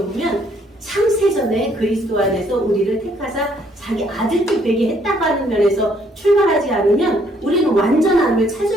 창세 전에 그리스도 안에서 우리를 택하사 자기 아들들 되게 했다고 하는 면에서 출발하지 않으면 우리는 완전함을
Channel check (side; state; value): both; normal; correlation 0.67